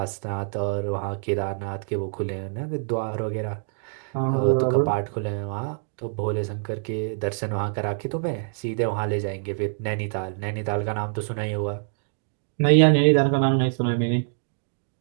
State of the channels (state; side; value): silent; left; digital silence